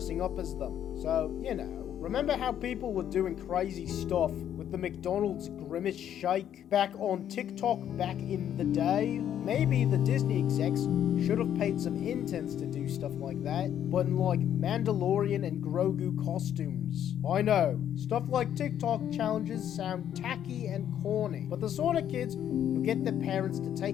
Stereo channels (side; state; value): right; quieter; 10.1 dB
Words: up as them. So, you know, remember how people were doing crazy stuff with the McDonald's Grimace Shake back on TikTok back in the day? Maybe the Disney execs should have paid some interns to do stuff like that, but in like Mandalorian and Grogu costumes. I know, stuff like TikTok challenges sound tacky and corny, but the sort of kids who get their parents to